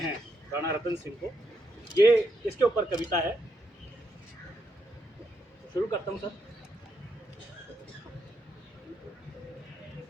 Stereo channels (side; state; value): both; normal; correlation 0.80